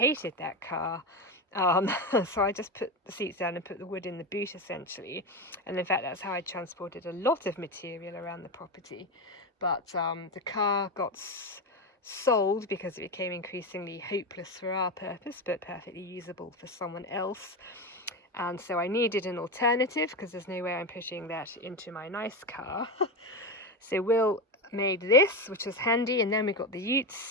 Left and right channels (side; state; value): both; normal; correlation 0.16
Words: that car. So I just put the seats down and put the wood in the boot essentially, and in fact that's how I transported a lot of material around the property. But the car got sold because it became increasingly hopeless for our purpose but perfectly usable for someone else, and so I needed an alternative because there's no way I'm pushing that into my nice car. So Will made this, which was handy, and then we got the utes,